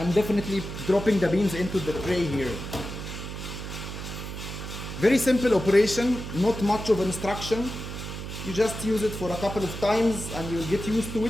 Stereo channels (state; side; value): noise; right; hum, 8 dB below the sound